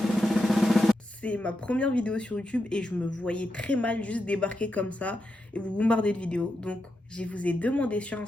C'est ma première vidéo sur YouTube et je me voyais très mal juste débarquer comme ça et vous bombarder de vidéos. Donc, je vous ai demandé sur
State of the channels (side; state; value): both; normal; correlation 0.86